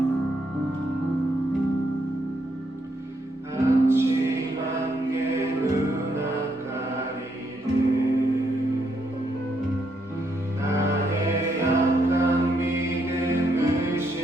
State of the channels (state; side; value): normal; both; correlation 0.76